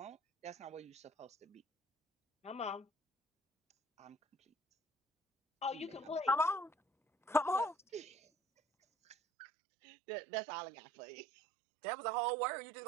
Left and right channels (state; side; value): drops out; left; at 9.2 s